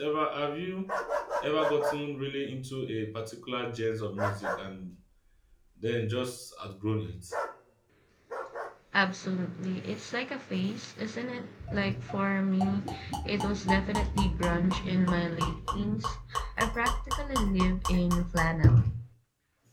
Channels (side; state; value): both; identical; correlation 1.00